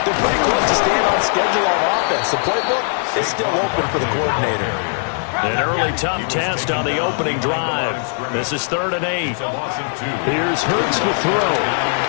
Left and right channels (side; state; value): right; silent; 67 dB below the other